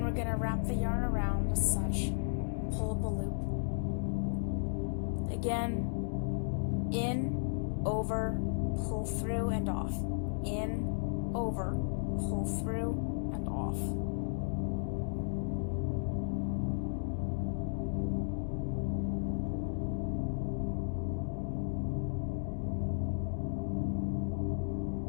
we're going to wrap the yarn around as such and pull up a loop. Again, in, over, pull through and off. In, over, pull through and off.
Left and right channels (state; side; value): silent; right; digital silence